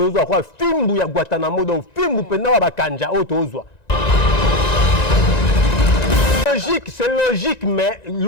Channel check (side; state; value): right; late; 1.9 ms